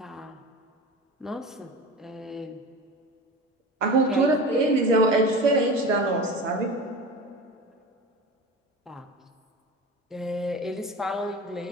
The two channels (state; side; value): normal; both; correlation 0.31